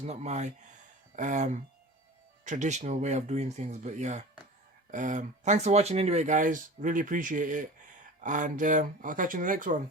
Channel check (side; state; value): both; normal; correlation 0.36